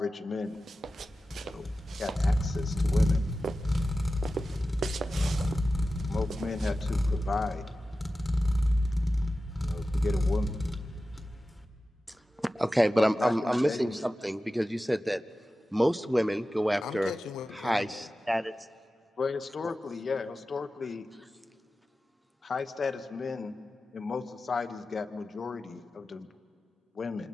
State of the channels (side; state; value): both; normal; correlation 0.94